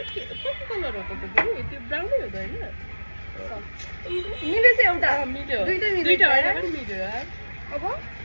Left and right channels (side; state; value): both; inverted; correlation -1.00